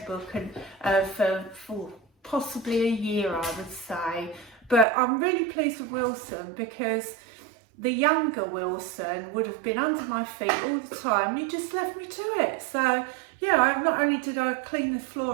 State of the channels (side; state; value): left; drops out; at 4.9 s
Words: book for possibly a year, I would say. But I'm really pleased with Wilson, because the younger Wilson would have been under my feet all the time. You just left me to it. So yeah, not only did I clean the